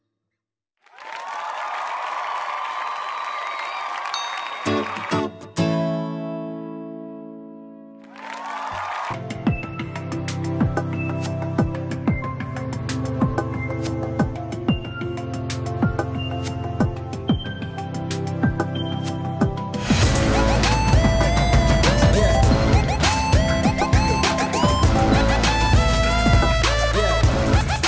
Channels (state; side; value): identical; both; correlation 1.00